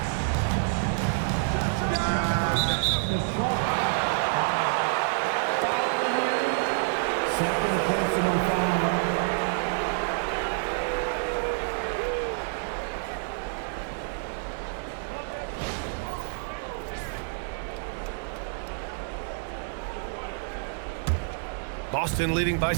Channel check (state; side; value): silent; left; digital silence